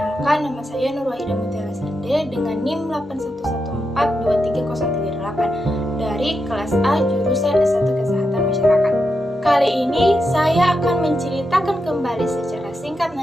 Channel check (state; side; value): normal; both; correlation 0.86